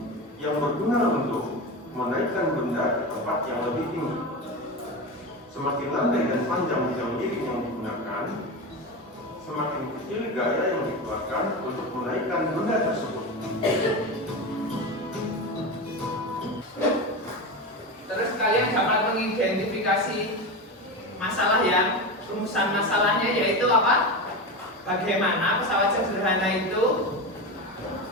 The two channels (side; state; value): both; normal; correlation 0.21